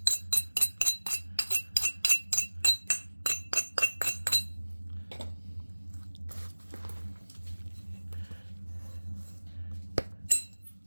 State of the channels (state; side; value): inverted; both; correlation -1.00